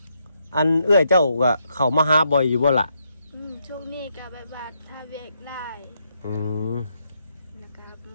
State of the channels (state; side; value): inverted; both; correlation -0.78